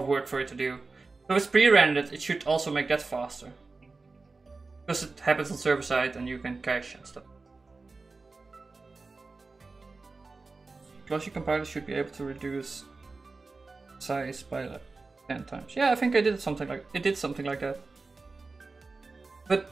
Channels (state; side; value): quieter; left; 3.8 dB